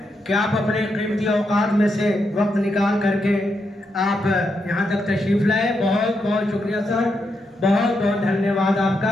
कि आप अपने कीमती औकात में से वक्त निकाल करके आप यहाँ तक तशरीफ लाए। बहुत बहुत शुक्रिया सर, बहुत बहुत धन्यवाद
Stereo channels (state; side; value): normal; both; correlation 0.82